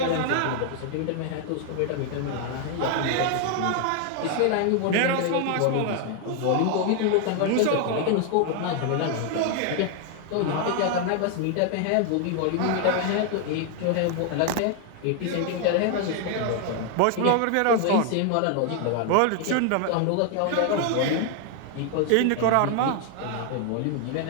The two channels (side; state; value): both; different; correlation 0.00